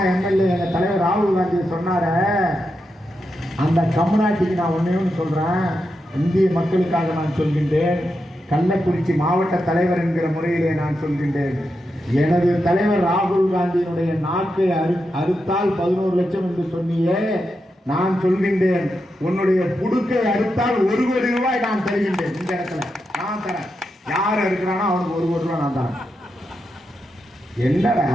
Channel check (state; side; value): normal; both; correlation 0.86